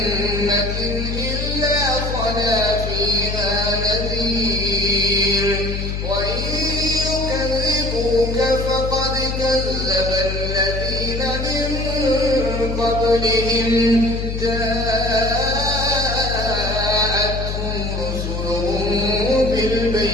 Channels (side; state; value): left; noise; hum, 3 dB below the sound